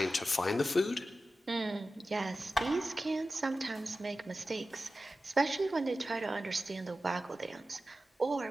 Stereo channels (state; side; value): normal; both; correlation 0.94